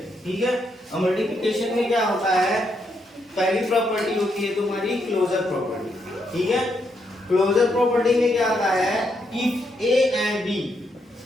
ठीक है, अब मल्टीप्लिकेशन में क्या होता है, पहली प्रॉपर्टी होती है तुम्हारी क्लोजर प्रॉपर्टी। ठीक है, क्लोजर प्रॉपर्टी में क्या आता है, if a and b,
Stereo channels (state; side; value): normal; both; correlation 0.78